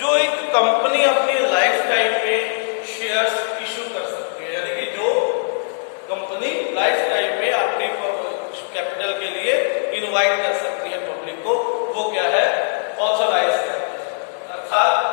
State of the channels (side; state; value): right; silent; 61 dB below the other